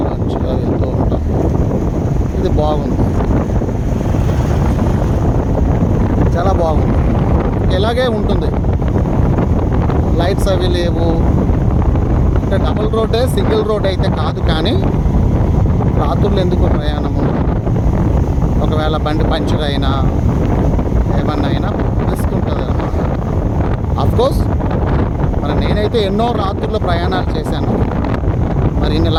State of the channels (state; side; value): identical; both; correlation 1.00